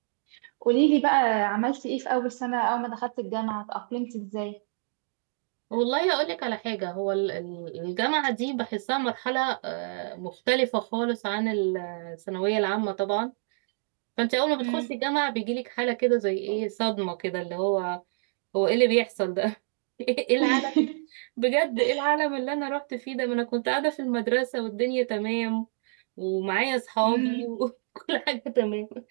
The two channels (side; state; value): left; silent; digital silence